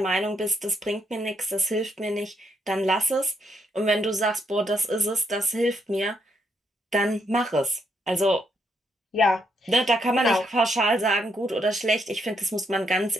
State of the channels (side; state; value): both; normal; correlation 0.76